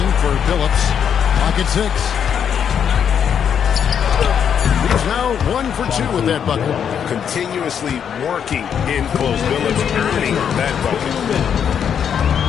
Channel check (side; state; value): right; quieter; 8.0 dB